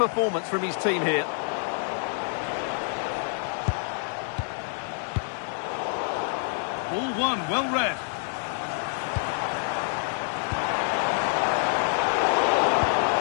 from his team here. Ball one, well read.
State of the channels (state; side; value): silent; right; 60 dB below the other